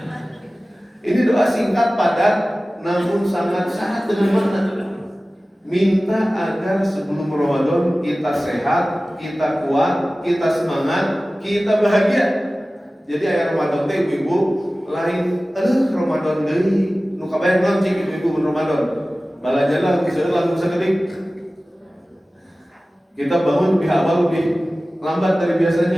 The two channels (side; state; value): both; normal; correlation 0.97